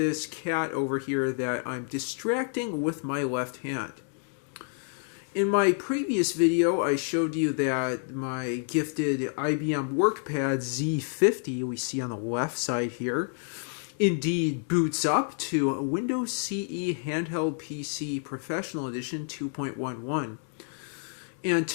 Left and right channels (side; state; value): right; silent; 58 dB below the other